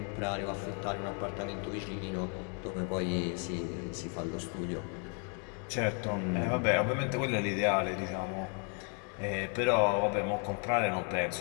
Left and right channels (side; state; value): right; quieter; 39.2 dB